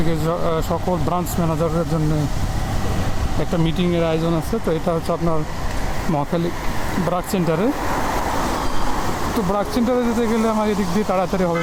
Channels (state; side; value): identical; both; correlation 1.00